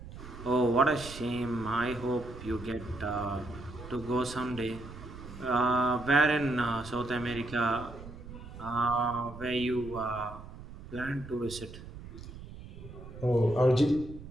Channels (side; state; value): right; noise; rumble, 14 dB below the sound